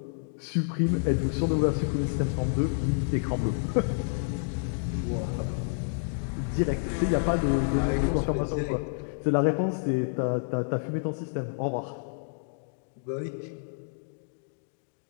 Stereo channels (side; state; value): right; silent; digital silence